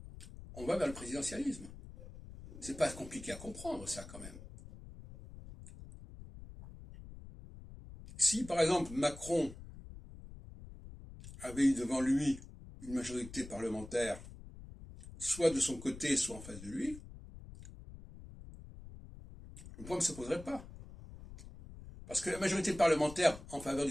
on va vers le présidentialisme. C'est pas compliqué à comprendre, ça, quand même. Si, par exemple, Macron avait eu devant lui une majorité parlementaire, soit de son côté, soit en face de lui, le problème ne se poserait pas. Parce que la majorité parlementaire en faveur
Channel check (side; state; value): left; noise; rumble, 15 dB below the sound